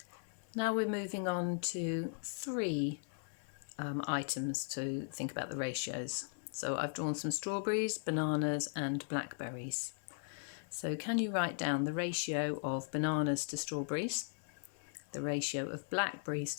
Now we're moving on to 3 items to think about the ratios. So I've drawn some strawberries, bananas and blackberries. So can you write down the ratio of bananas to strawberries, the ratio of blackberries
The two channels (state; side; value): silent; right; 52 dB below the other